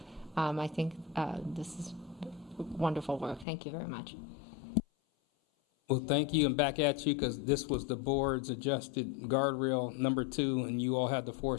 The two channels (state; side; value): drops out; right; at 3.5 s